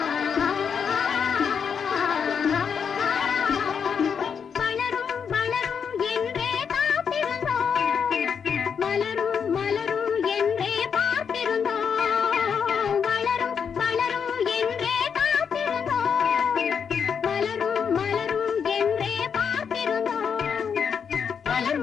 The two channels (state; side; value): quieter; right; 6.8 dB